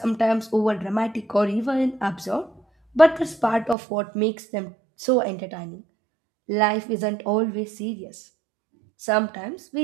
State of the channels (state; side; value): drops out; left; at 3.8 s